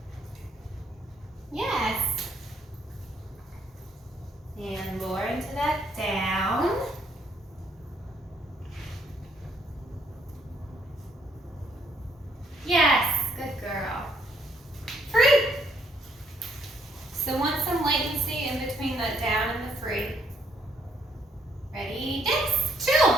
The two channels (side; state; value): both; normal; correlation 0.69